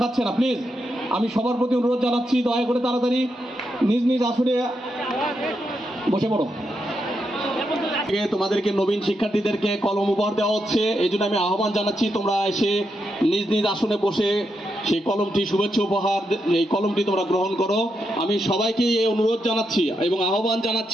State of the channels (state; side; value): normal; both; correlation 0.83